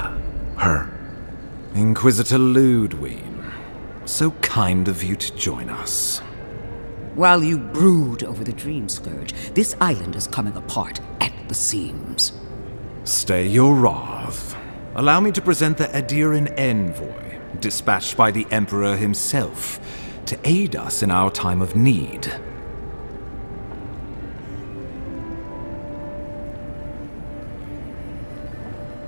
her? Inquisitor Ludwig. So kind of you to join us. While you brood over the Dream Scourge, this island is coming apart at the seams. Stay your wrath. Allow me to present the Adiran Envoy, dispatched by the Emperor himself, to aid us in our time of need.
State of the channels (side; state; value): both; inverted; correlation -1.00